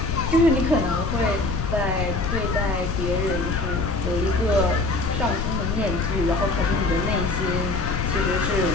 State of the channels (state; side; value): noise; left; rumble, 2 dB below the sound